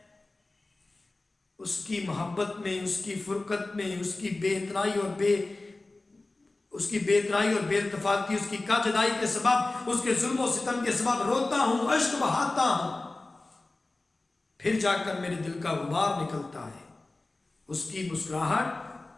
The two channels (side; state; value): right; quieter; 3.1 dB